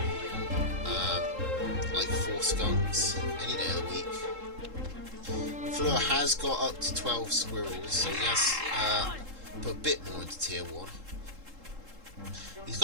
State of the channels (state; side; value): late; left; 3.7 ms